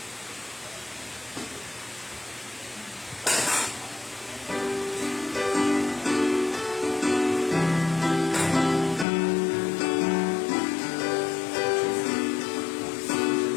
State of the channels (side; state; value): right; drops out; at 9.1 s